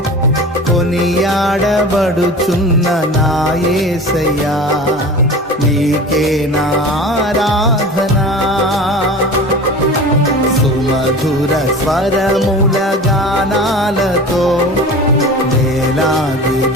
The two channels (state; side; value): normal; both; correlation 0.35